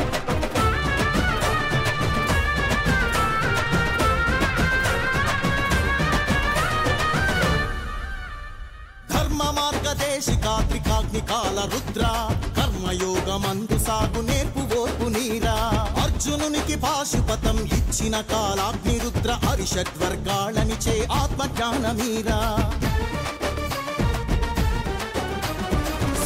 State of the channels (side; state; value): both; identical; correlation 1.00